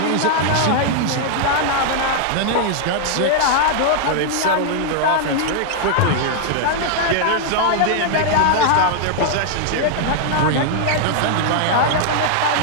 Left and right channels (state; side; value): different; both; correlation 0.00